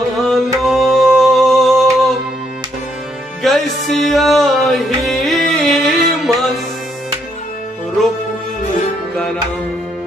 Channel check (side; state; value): both; normal; correlation 0.73